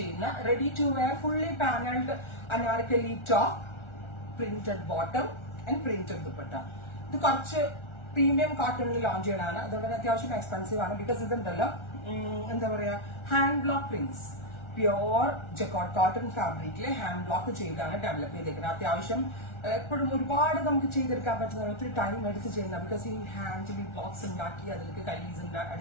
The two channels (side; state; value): right; late; 1.4 ms